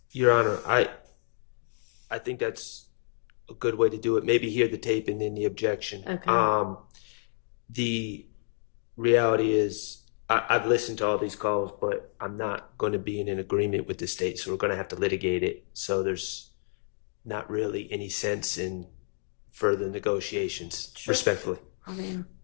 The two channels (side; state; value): right; silent; digital silence